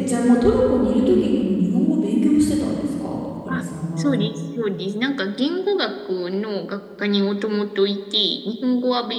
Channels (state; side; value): identical; both; correlation 1.00